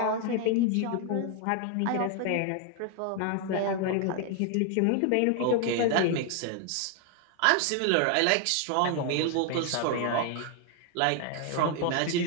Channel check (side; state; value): both; different; correlation 0.00